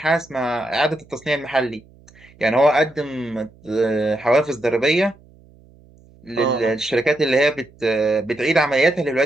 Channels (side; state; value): right; noise; hum, 27 dB below the sound